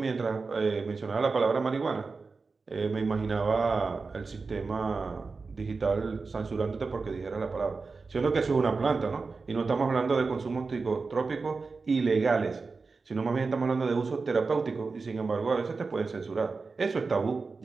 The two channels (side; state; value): left; quieter; 4.3 dB